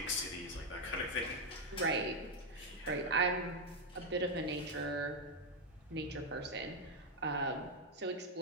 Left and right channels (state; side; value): normal; both; correlation 0.03